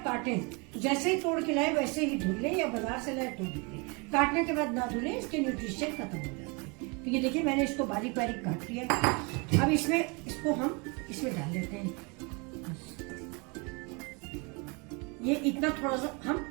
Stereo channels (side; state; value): left; quieter; 30.6 dB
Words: काटें जैसे ही तोड़ के लाए वैसे ही धुल लें या बाजार से लाए तो धुल लें। काटने के बाद ना धुलें, इसके न्यूट्रिशन खत्म हो जाते हैं। तो ये देखिए मैंने इसको बारीक बारीक काट लिया। अब इसको हम इसमें डाल देते हैं। ये इतना थोड़ा सा